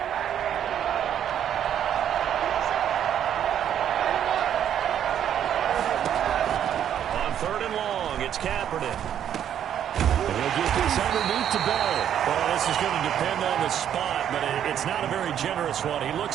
On 3rd and long, it's Kaepernick. He'll get this underneath to Bell. Well, this is going to depend on the spot, but it's not a very generous one. He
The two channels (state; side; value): quieter; left; 9.8 dB